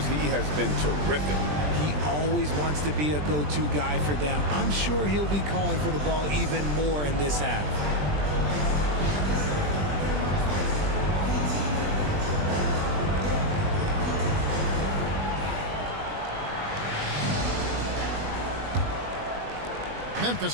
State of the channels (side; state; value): left; late; 20 ms